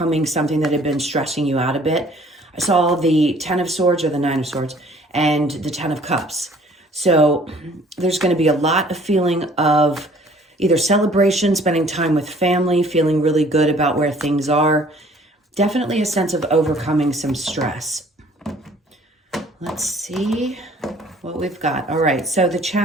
something that had been stressing you out a bit. I saw the 10 of Swords or the 9 of Swords and the 10 of Cups. So there's going to be a lot of feeling of either celebration, spending time with family, feeling really good about where things are. Definitely a sense of overcoming some stress. Let's see what we've got. All right, so the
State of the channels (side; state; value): both; normal; correlation 0.55